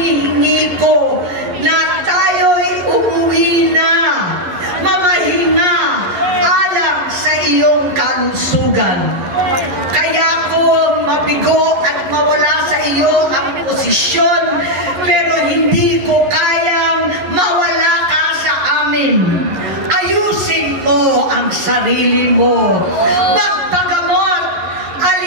ko na tayo'y umuwi na, mamahinga alang sa iyong kalusugan. Kaya ko mabigo at mawala sa iyo ang posisyon, pero hindi ko kayang mawala ka sa amin. Ayusin mo ang sarili mo. Magpagamot,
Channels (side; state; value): left; late; 11 ms